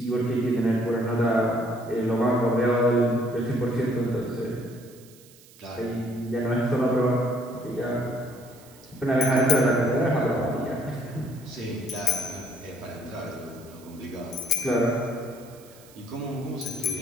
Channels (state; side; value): noise; right; hiss, 24 dB below the sound